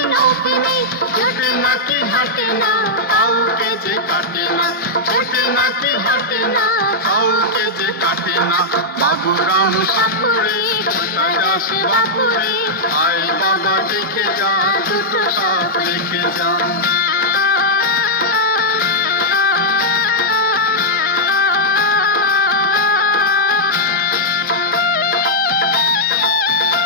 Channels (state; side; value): normal; both; correlation -0.06